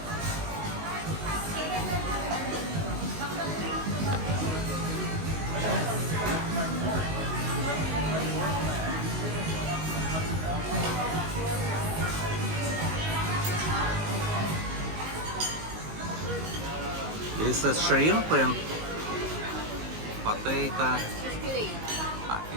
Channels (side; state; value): left; late; 19 ms